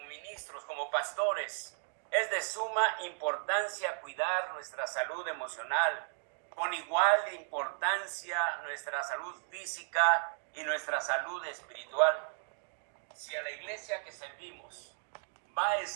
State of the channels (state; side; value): silent; left; 54 dB below the other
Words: ministros, como pastores, es de suma importancia cuidar nuestra salud emocional, con igual importancia nuestra salud física y nuestra salud espiritual. Si a la iglesia que servimos va a